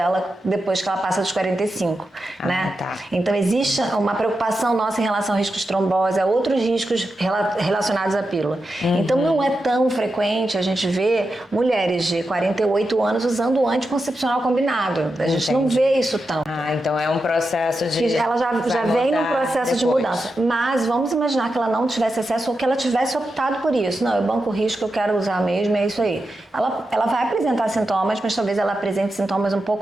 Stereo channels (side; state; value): both; normal; correlation 0.89